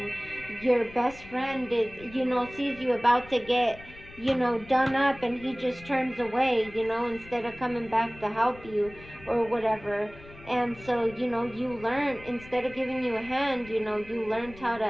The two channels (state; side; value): noise; left; rumble, 19 dB below the sound